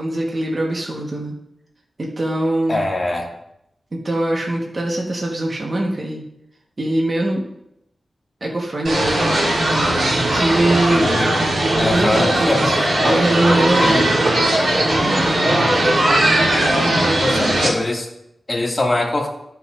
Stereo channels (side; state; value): both; normal; correlation 0.92